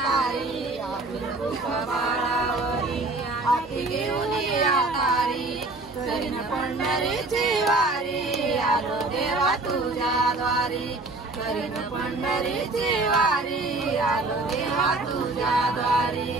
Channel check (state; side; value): quieter; left; 3.1 dB